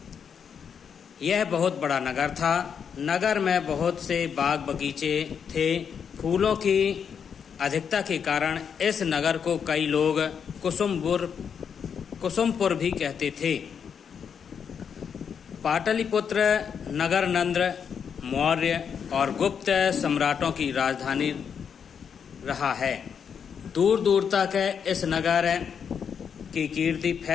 यह बहुत बड़ा नगर था। नगर में बहुत से बाग बगीचे थे। फूलों की अधिकता के कारण इस नगर को कई लोग कुसुमपुर भी कहते थे। पाटलिपुत्र नगर नंद, मौर्य और गुप्त सम्राटों की राजधानी रहा है। दूर दूर तक इस नगर की कीर्ति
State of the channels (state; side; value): quieter; right; 7.2 dB